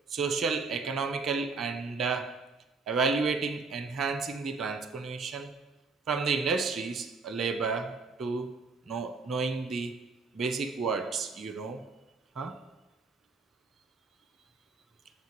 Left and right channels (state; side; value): quieter; left; 4.3 dB